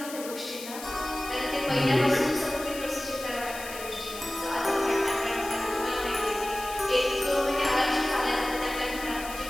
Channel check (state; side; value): noise; left; hiss, 12 dB below the sound